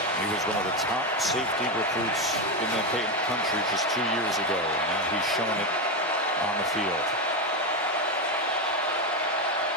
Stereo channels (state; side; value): normal; both; correlation 0.11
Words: He was one of the top safety recruits in the country just 2 years ago. Now he's showing it on the field.